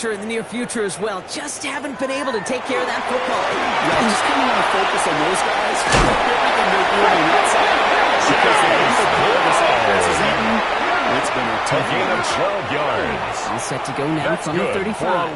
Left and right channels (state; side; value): identical; both; correlation 1.00